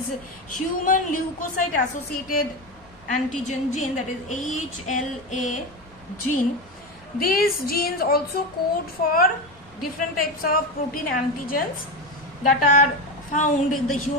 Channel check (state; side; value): normal; both; correlation 0.18